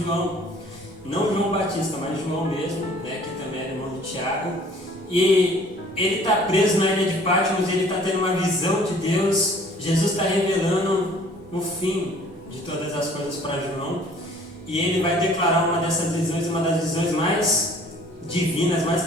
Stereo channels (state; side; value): normal; both; correlation 0.53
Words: não João Batista, mas João mesmo, né, que também era irmão de Tiago, e ele está preso na ilha de Patmos, ele está tendo uma visão de Deus. Jesus está revelando o fim de todas as coisas para João, e ele vai declarar uma dessas visões, uma das visões mais divinas, mais